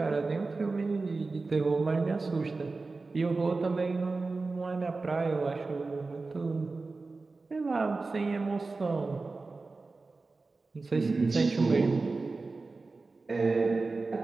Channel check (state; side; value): quieter; left; 3.8 dB